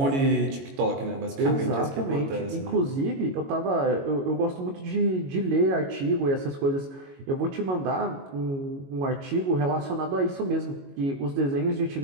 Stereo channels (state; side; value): late; left; 22 ms